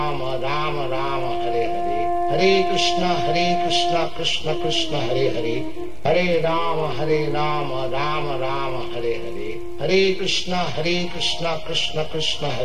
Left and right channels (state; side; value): noise; right; rumble, 17 dB below the sound